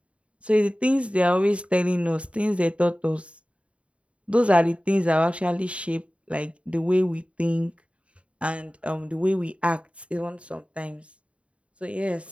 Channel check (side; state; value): left; late; 0.062 ms